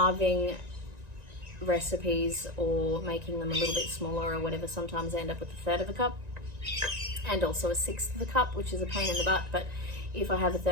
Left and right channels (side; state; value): left; late; 1.9 ms